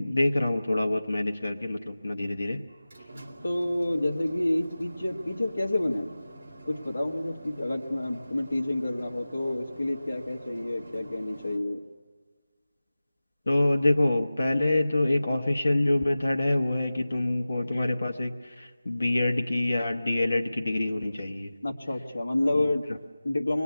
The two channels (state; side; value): inverted; both; correlation -0.97